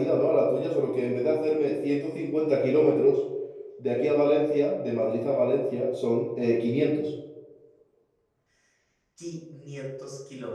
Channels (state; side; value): identical; both; correlation 1.00